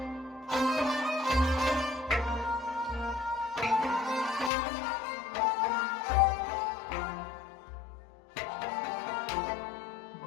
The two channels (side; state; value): right; drops out; at 4.5 s